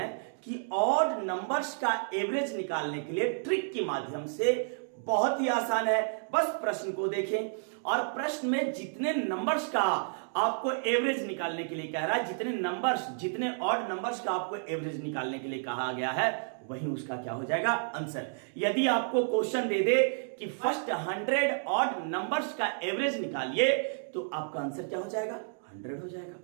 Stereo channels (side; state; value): left; silent; digital silence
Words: कि ऑड नंबर्स का एवरेज निकालने के लिए ट्रिक के माध्यम से बहुत ही आसान है। बस प्रश्न को देखें, और प्रश्न में जितने नंबर्स का आपको एवरेज निकालने के लिए कह रहा है, जितने ऑड नंबर्स का आपको एवरेज निकालने के लिए कहा गया है, वही उसका क्या हो जाएगा? आंसर। यदि आपको क्वेश्चन दे दे कि फर्स्ट 100 ऑड नंबर्स का एवरेज निकालिए, तो आपका आंसर क्या हो जाएगा? 100 हो जाएगा।